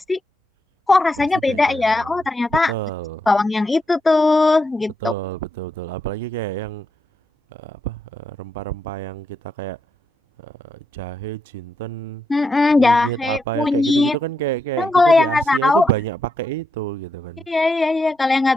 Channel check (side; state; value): both; normal; correlation 0.82